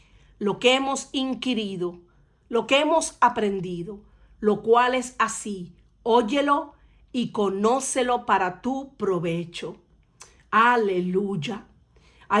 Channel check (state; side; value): identical; both; correlation 1.00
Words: lo que hemos inquirido, lo que hemos aprendido, lo cual es así. Óyelo y conócelo para tu provecho. Aleluya.